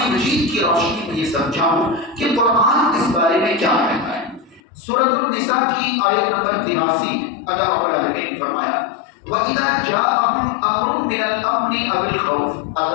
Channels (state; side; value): drops out; right; at 4.6 s